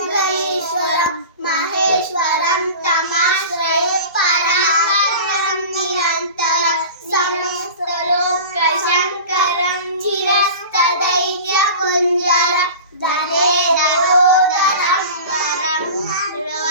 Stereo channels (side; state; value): both; inverted; correlation -0.36